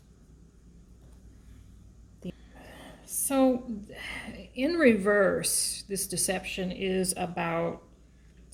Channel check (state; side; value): identical; both; correlation 1.00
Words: So, in reverse, this deception is about